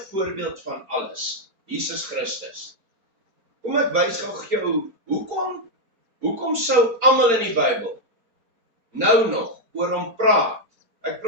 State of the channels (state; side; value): late; left; 4.4 ms